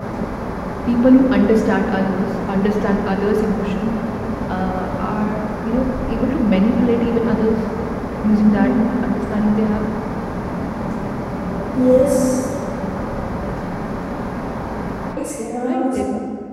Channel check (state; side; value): identical; both; correlation 1.00